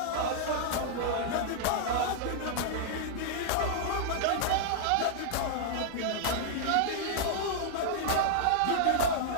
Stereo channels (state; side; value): different; both; correlation -0.01